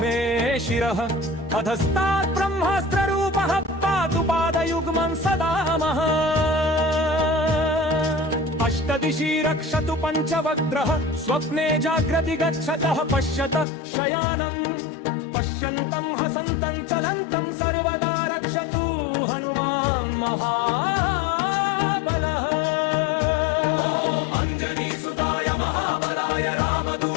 मे शिरः अधस्तात् ब्रह्मास्त्ररूपः पातु पादयुग्मं सदा मः अष्टदिशि रक्षतु पञ्चवक्त्रः स्वप्ने जाग्रति गच्छतः पश्यतः शयानम् पश्यन्तं हसन्तं चलन्तं सर्वदा रक्षतु हनुमान् महाबलः अञ्जनीसुताय महाबलाय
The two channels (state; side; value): drops out; right; at 13.7 s